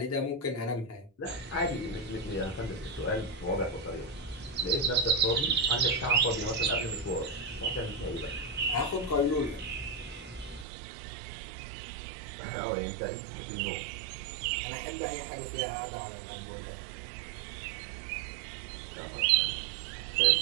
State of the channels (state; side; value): drops out; left; at 10.7 s